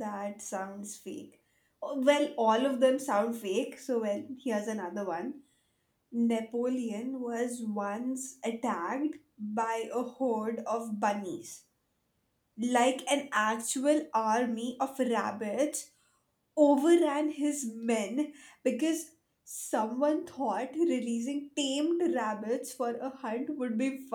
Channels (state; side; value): identical; both; correlation 1.00